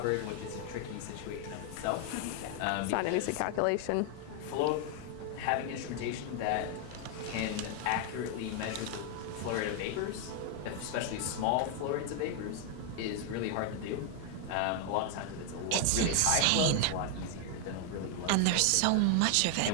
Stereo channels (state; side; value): different; both; correlation 0.00